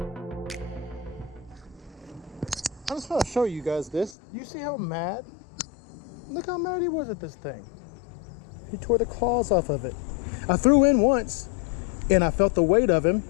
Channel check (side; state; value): right; drops out; at 4.2 s